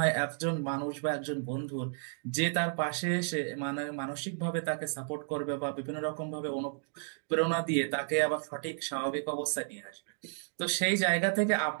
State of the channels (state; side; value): silent; left; digital silence